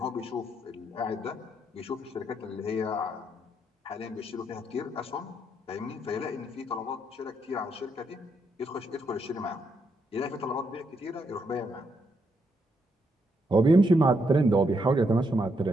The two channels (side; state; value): both; normal; correlation 0.78